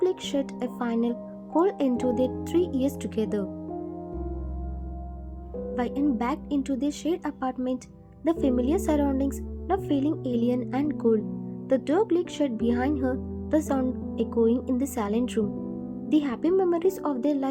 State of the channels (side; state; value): both; identical; correlation 1.00